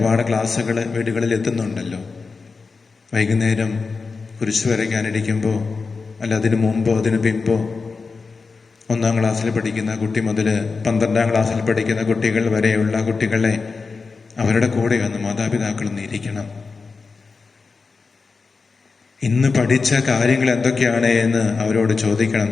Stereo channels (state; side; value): quieter; right; 4.5 dB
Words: ക്ലാസ്സുകൾ വീടുകളിൽ എത്തുന്നുണ്ടല്ലോ. വൈകുന്നേരം കുരിശ് വരയ്ക്കാനിരിക്കുമ്പോൾ, അല്ല അതിനു മുമ്പോ അതിനു പിമ്പോ, 1-ാം ക്ലാസ്സിൽ പഠിക്കുന്ന കുട്ടി മുതൽ 12-ാം ക്ലാസ്സിൽ പഠിക്കുന്ന കുട്ടികൾ വരെയുള്ള കുട്ടികളെ അവരുടെ കൂടെ വന്ന് മാതാപിതാക്കളൊന്ന് ഇരിക്കണം. ഇന്ന് പഠിച്ച കാര്യങ്ങൾ എന്തൊക്കെയാണ് എന്ന് അവരോട് ചോദിക്കണം.